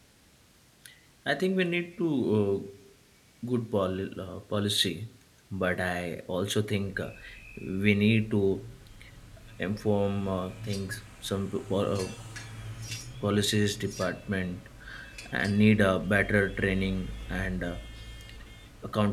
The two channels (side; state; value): both; identical; correlation 1.00